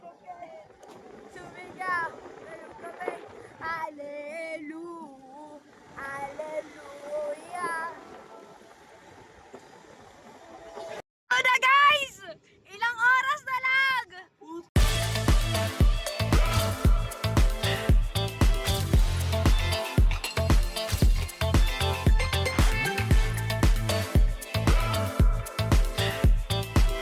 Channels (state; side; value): identical; both; correlation 1.00